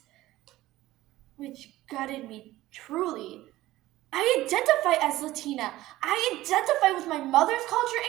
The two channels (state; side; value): quieter; left; 16.4 dB